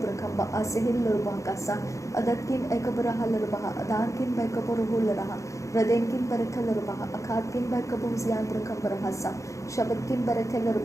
खंबा असिहिल लर बहाकसा अदत किन एकबर हलर बहा अदान किन बैकबर हुलर हृदय किन बरखलर बहा अखात किन बैकबोज यांत्र खंबर हसा शब्द किन बरखलर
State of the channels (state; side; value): late; right; 0.15 ms